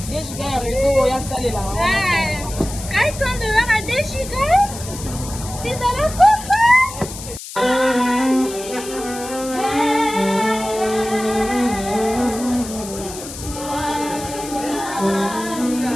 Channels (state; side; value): noise; left; hiss, 12 dB below the sound